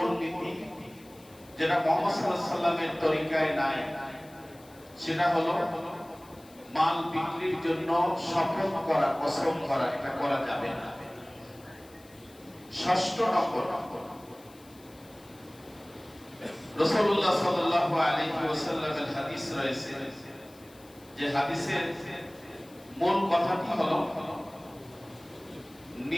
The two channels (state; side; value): noise; left; hiss, 25 dB below the sound